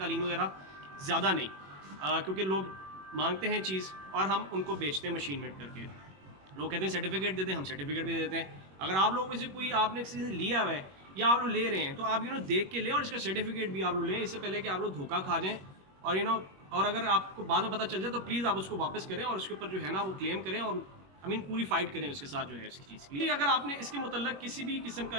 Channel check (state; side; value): late; left; 21 ms